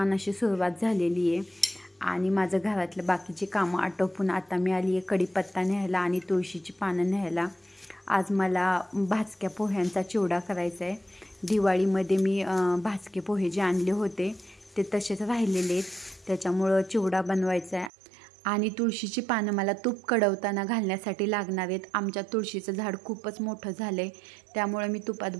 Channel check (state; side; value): drops out; left; at 17.9 s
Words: अशी सुरुवात झालेली आहे आणि माझं घरातलं बाकीची कामं आटोपून आता मी आली आहे कढीपत्ता न्यायला आणि तुळशीची पानं न्यायला. आज मला भाजक्या पोह्यांचा चिवडा करायचा आहे. दिवाळीमध्ये मी भाजके पोहे जे आणले होते ते तसेच राहिलेले आहेत, त्याच्यामुळं चिवडा बनवायचा आहे. आणि तुळशीची पानं मला तूप कडवताना घालण्यासाठी लागणार आहेत. आमच्या तुळशीचं झाड खूपच मोठं झालं आहे, त्यामुळे मी तुपात